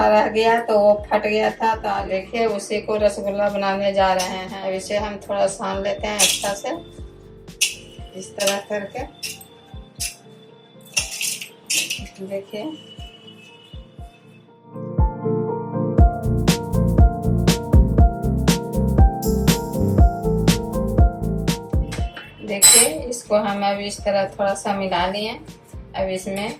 गया तो वो फट गया था, तो देखिए उसी को रसगुल्ला बनाने जा रहे हैं। अब इसे हम थोड़ा सान लेते हैं अच्छा से, इस तरह करके। देखिए देखिए इसको हम अब इस तरह थोड़ा सा मिला लिए। अब इसमें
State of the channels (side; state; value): both; identical; correlation 1.00